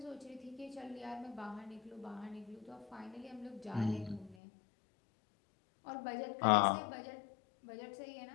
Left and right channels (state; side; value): drops out; right; at 4.4 s